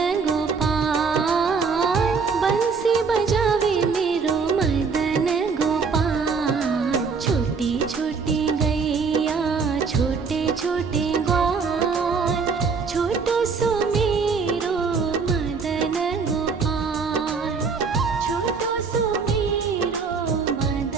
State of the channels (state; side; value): quieter; left; 5.2 dB